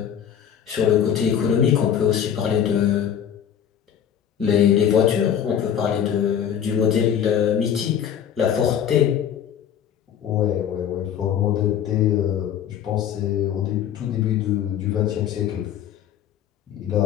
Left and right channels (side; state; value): right; quieter; 9.1 dB